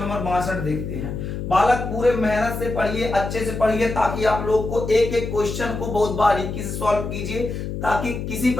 62 देखते हैं। बालक पूरे मेहनत से पढ़िए, अच्छे से पढ़िए, ताकि आप लोग को एक एक क्वेश्चन को बहुत बारीकी से सॉल्व कीजिए, ताकि किसी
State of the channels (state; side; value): noise; left; hum, 5 dB below the sound